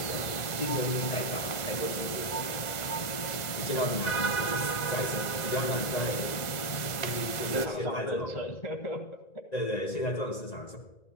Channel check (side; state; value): right; late; 2.0 ms